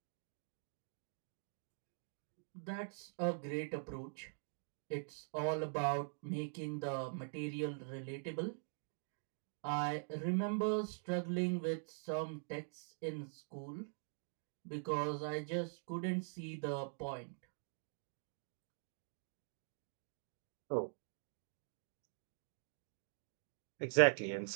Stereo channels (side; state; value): left; silent; digital silence